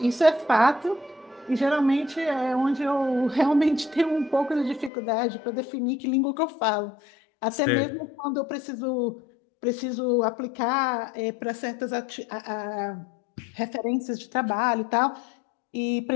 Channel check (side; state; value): right; drops out; at 4.9 s